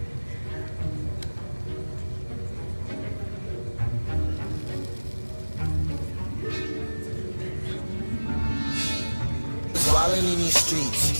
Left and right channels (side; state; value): both; inverted; correlation -1.00